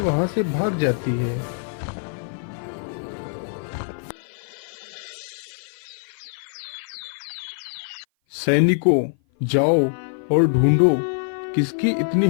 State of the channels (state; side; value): silent; right; 56 dB below the other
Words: से भाग जाती है। सैनिकों, जाओ और ढूंढो किसकी इतनी